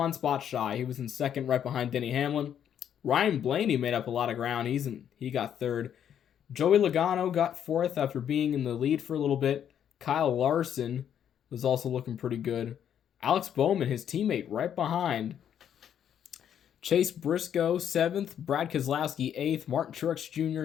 spot shy. He was in second right behind Denny Hamlin. Ryan Blaney made up a lot of ground. He got third. Joey Logano got fourth after being in the lead for a little bit. Kyle Larson was also looking pretty good. Alex Bowman, his teammate, right behind. Chase Briscoe, 7th. Brad Keselowski, 8th. Martin Truex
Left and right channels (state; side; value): quieter; right; 9.3 dB